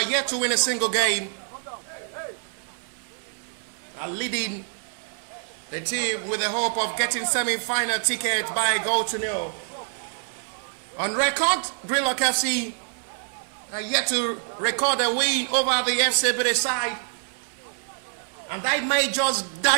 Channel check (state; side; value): silent; left; digital silence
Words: yet to win a single game, are leading the team with the hope of getting semi-final ticket by a goal to nil. On record, Greenlock FC are yet to record a win over the FC Ebedei side, and that may just